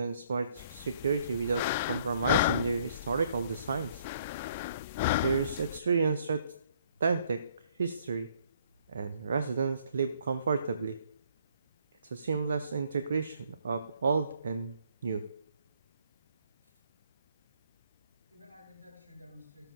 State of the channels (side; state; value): both; inverted; correlation -0.64